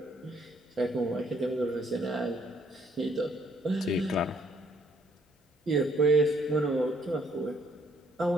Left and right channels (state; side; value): normal; both; correlation 0.67